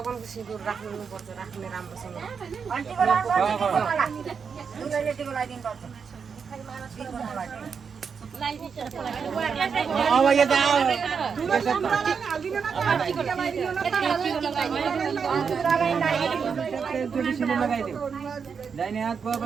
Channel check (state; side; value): quieter; left; 6.1 dB